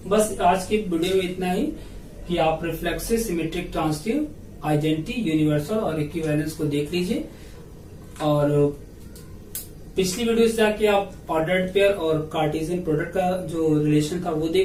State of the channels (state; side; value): identical; both; correlation 1.00